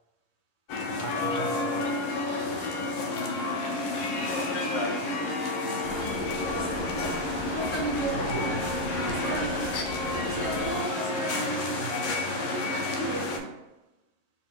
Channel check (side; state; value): right; late; 11 ms